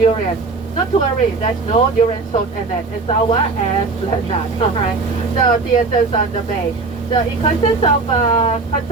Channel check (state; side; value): quieter; left; 3.9 dB